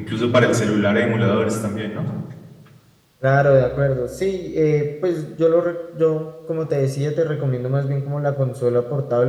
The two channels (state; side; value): identical; both; correlation 1.00